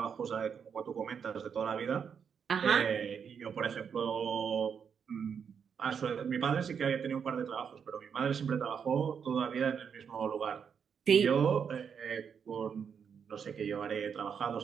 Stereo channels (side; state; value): left; quieter; 7.0 dB